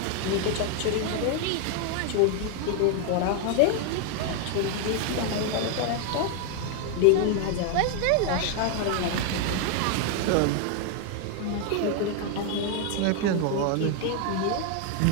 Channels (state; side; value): different; both; correlation 0.01